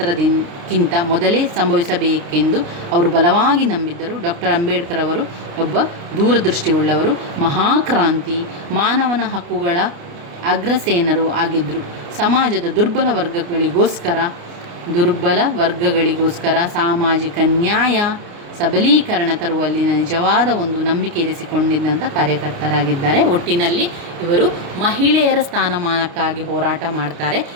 ಮೊದಲೇ ಸಂಭವಿಸಬೇಕೆಂದು ಅವರು ಬಲವಾಗಿ ನಂಬಿದ್ದರು. ಡಾಕ್ಟರ್ ಅಂಬೇಡ್ಕರ್ ಅವರು ಒಬ್ಬ ದೂರದೃಷ್ಟಿಯುಳ್ಳವರು, ಮಹಾಕ್ರಾಂತಿ, ಮಾನವನ ಹಕ್ಕುಗಳ ಅಗ್ರಸೇನರು ಆಗಿದ್ದರು. ಸಮಾಜದ ದುರ್ಬಲ ವರ್ಗಗಳಿಗೋಸ್ಕರ ಸಾಮಾಜಿಕ ನ್ಯಾಯ ಸಬಲೀಕರಣ ತರುವಲ್ಲಿ ನಿಜವಾದ ಒಂದು ನಂಬಿಕೆ ಇರಿಸಿಕೊಂಡಿದ್ದಂಥ ಕಾರ್ಯಕರ್ತರಾಗಿದ್ದಾರೆ. ಒಟ್ಟಿನಲ್ಲಿ ಇವರು ಮಹಿಳೆಯರ ಸ್ಥಾನಮಾನಕ್ಕಾಗಿ ಹೋರಾಟ ಮಾಡ್ತಾರೆ,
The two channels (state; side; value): late; left; 29 ms